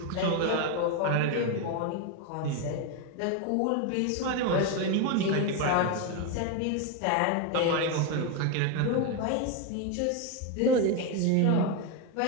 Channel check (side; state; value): both; different; correlation 0.02